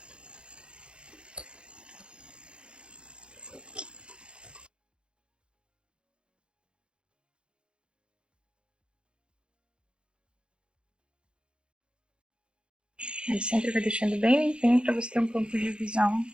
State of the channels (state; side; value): late; left; 0.055 ms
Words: Aí sempre vai deixando bem limpinho para você ter um ponto de visão.